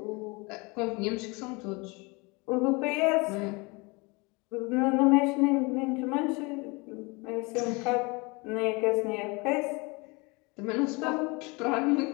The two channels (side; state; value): right; quieter; 27.5 dB